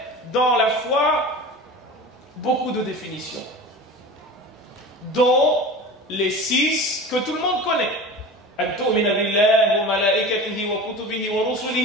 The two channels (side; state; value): both; normal; correlation 0.34